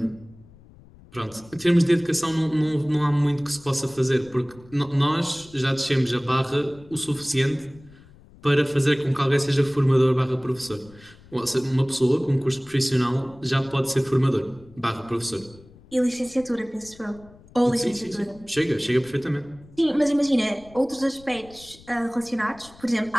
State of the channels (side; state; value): left; noise; rumble, 24 dB below the sound